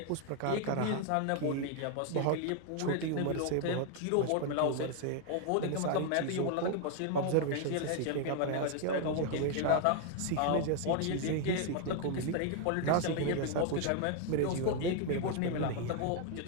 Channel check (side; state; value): both; different; correlation 0.00